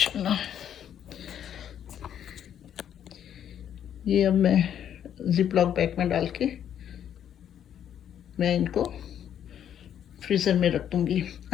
ये अब मैं जिप लॉक बैग में डाल के मैं इनको फ्रीज़र में रख दूँगी।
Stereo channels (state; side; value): quieter; right; 9.6 dB